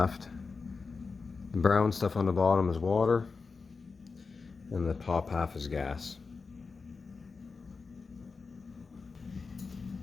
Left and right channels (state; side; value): quieter; right; 4.6 dB